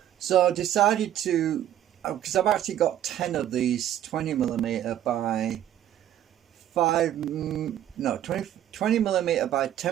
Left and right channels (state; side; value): quieter; left; 11.6 dB